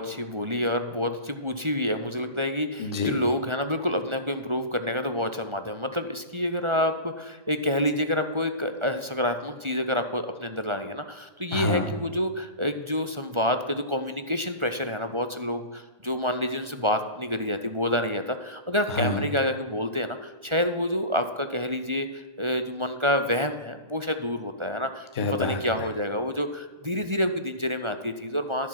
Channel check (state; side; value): late; left; 1.4 ms